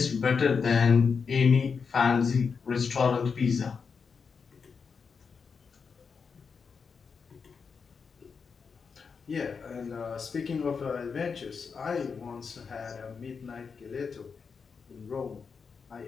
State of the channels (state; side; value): quieter; right; 5.6 dB